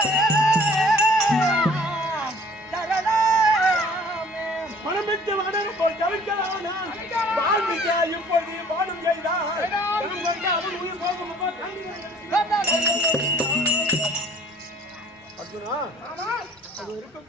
மனமிட்டு வடன போல் தவிர்க்கலாம். இப்பொழுது பாடும் செய்தான் உயிர் போகும். அர்ஜுனா அது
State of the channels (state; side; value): normal; both; correlation 0.53